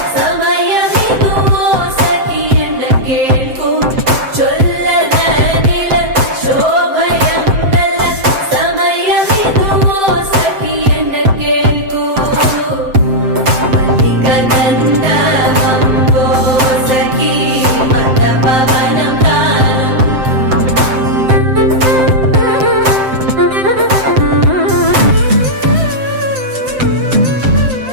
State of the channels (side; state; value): left; late; 7.7 ms